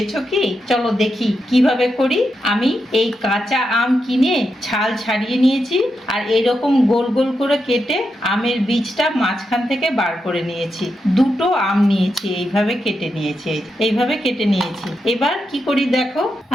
কি? চলো দেখি কিভাবে করি। আমি এই কাঁচা আম কিনে ছাল ছাড়িয়ে নিয়েছি, আর এইরকম গোল গোল করে কেটে আমের বীজটা মাঝখান থেকে বার করে নিয়েছি। দুটো আম নিয়েছি, এইভাবে কেটে নিয়েছি, এইভাবে কেটে নিয়েছি। এবার কি করি দেখো,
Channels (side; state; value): both; normal; correlation 0.85